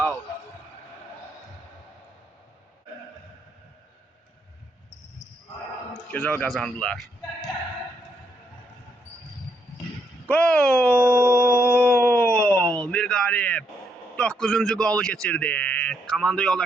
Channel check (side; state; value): both; normal; correlation 0.75